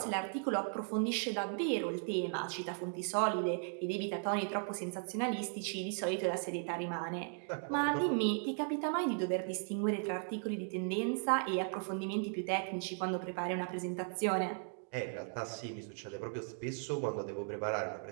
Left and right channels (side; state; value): left; silent; 53 dB below the other